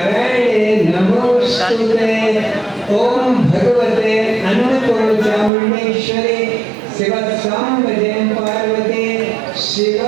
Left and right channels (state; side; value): drops out; left; at 5.5 s